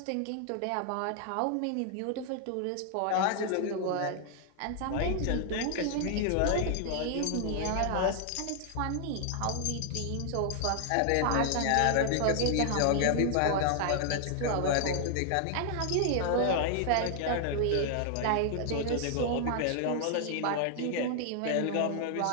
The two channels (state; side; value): different; both; correlation 0.00